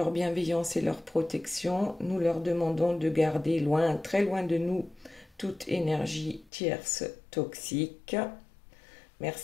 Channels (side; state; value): right; drops out; at 6.5 s